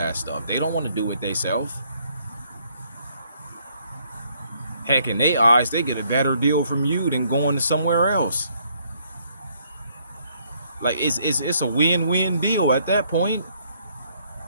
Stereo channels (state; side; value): inverted; both; correlation -0.68